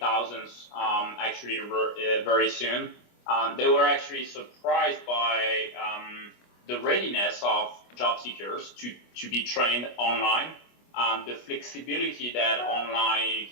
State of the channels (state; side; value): late; right; 25 ms